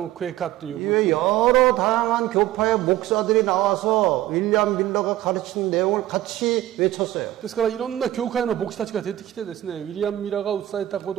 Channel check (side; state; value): left; quieter; 14.6 dB